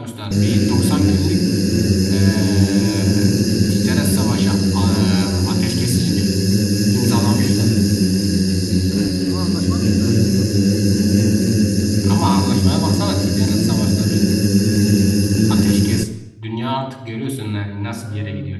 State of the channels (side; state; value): both; identical; correlation 1.00